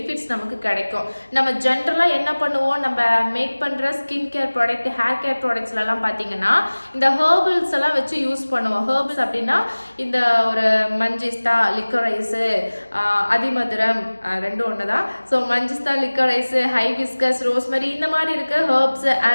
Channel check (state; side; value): inverted; both; correlation -1.00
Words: நமக்கு கிடைக்கும்? நம்ம ஜென்ரலாக என்ன பண்ணுவோம், நம்ம மேக் பண்ணுற skin care product, hair care ப்ராடக்ட்ஸ்லாம் பார்த்தீங்கன்னா இந்த ஹெர்பல்ஸ் எல்லாம் வச்சு யூஸ் பண்ணுவோம். ஹெர்பல்ஸ் அப்படின்னா இந்த ஒரு மஞ்சிஸ்தா, லிக்கரைஸு, அதிமதுரம் ரெண்டும் ஒன்று தான். ஸோ மஞ்சிஸ்தா, லிக்கரைஸு, ஹைபிஸ்கஸ், ரோஸ்மெரி இந்த மாதிரி இருக்க ஹெர்ப்ஸ்,